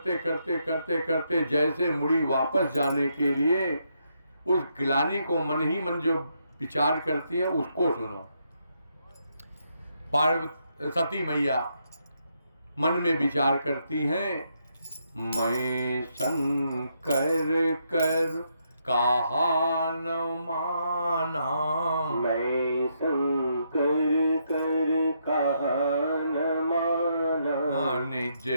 करते करते करते जैसे मुड़ी वापस जाने के लिए उस ग्लानि को मन ही मन जो विचार करती है उसको सुनो। सती मैया मन में विचार करती हैं, मैं शंकर कर कहा न माना, मैं शंकर कर कहा न माना, निज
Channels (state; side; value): inverted; both; correlation -0.78